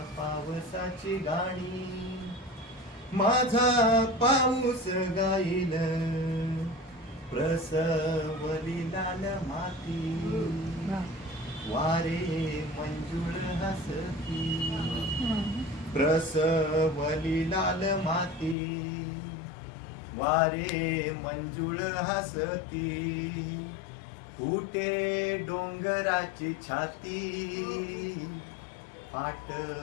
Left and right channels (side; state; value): right; drops out; at 18.6 s